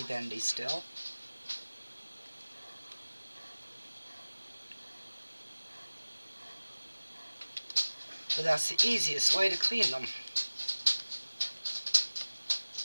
bendy still. But that's the easiest way to clean them.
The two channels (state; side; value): inverted; both; correlation -1.00